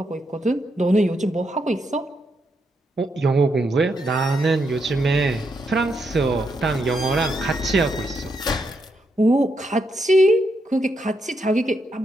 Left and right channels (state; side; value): normal; both; correlation 0.80